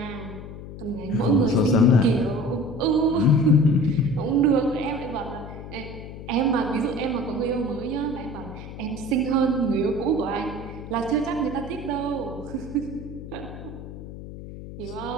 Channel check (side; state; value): left; noise; hum, 12 dB below the sound